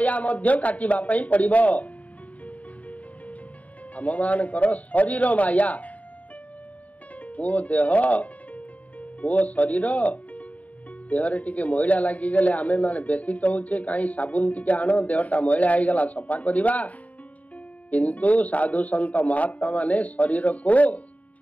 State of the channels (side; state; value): right; late; 0.070 ms